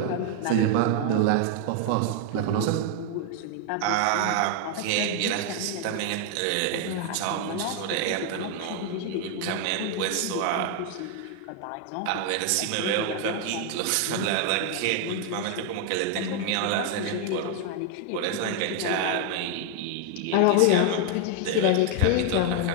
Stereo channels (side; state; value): both; different; correlation 0.00